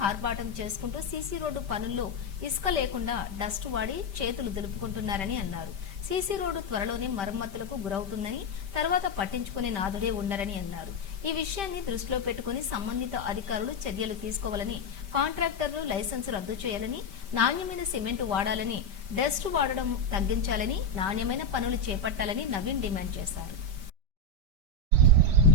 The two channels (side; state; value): left; late; 5.1 ms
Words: హార్బాటం చేసుకుంటూ సీసీ రోడ్డు పనుల్లో ఇసుక లేకుండా డస్ట్ వాడి చేతులు దులుపుకుంటున్నారని అన్నారు. సీసీ రోడ్డు త్వరలోనే మరమ్మతులకు గురవుతుందని, తర్వాత పట్టించుకునే నాదుడే ఉండరని అన్నారు. ఈ విషయాన్ని దృష్టిలో పెట్టుకుని సంబంధిత అధికారులు చర్యలు తీసుకోవాలని, కాంట్రాక్టర్లు లైసెన్స్ రద్దు చేయాలని, నాణ్యమైన సిమెంటు వాడాలని, డస్ట్ వాడడం తగ్గించాలని, నాణ్యమైన పనులు చేపట్టాలని నవీన్ డిమాండ్ చేశారు.